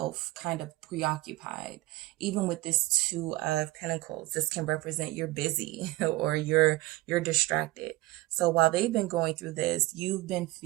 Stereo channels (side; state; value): left; quieter; 19.0 dB